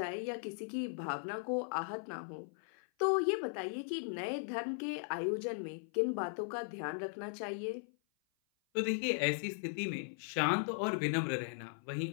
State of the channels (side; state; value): right; silent; 52 dB below the other